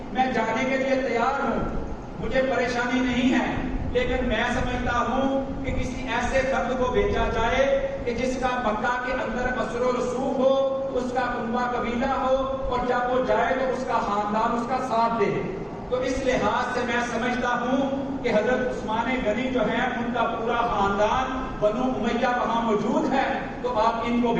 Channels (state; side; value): identical; both; correlation 1.00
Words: میں جانے کے لیے تیار ہوں، مجھے پریشانی نہیں ہے، لیکن میں سمجھتا ہوں کہ کسی ایسے فرد کو بھیجا جائے کہ جس کا مکہ کے اندر اثر و رسوخ ہو، اس کا کنبہ قبیلہ ہو، اور جب وہ جائے تو اس کا خاندان اس کا ساتھ دے۔ تو اس لحاظ سے میں سمجھتا ہوں کہ حضرت عثمان غنی جو ہیں ان کا پورا خاندان بنو امیہ وہاں موجود ہے، تو آپ ان کو